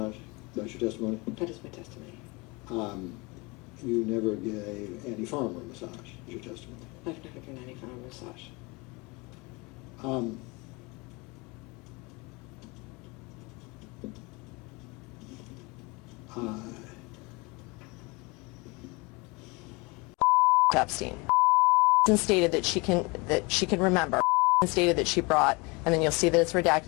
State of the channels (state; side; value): quieter; right; 26.7 dB